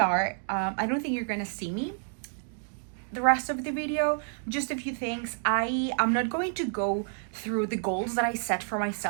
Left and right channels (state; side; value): silent; left; 55 dB below the other